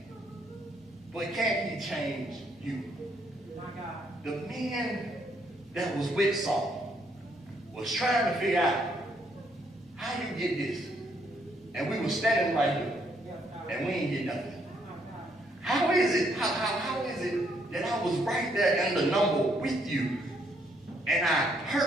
but can he change you? My God. The man that was with Saul was trying to figure out how you get this, and we were standing right here, and we ain't get nothing. How is it? How is it that I was right there in the number with you, and I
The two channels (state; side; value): normal; both; correlation 0.71